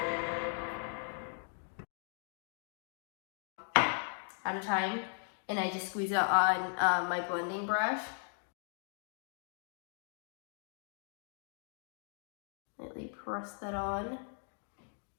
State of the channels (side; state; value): right; silent; 52 dB below the other